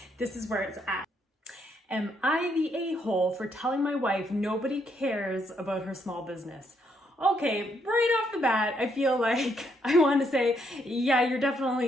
this is where it's at. Am I the a-hole for telling my wife nobody cares about her small business? Okay, right off the bat, I feel like I want to say, yeah, you're definitely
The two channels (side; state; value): both; normal; correlation 0.74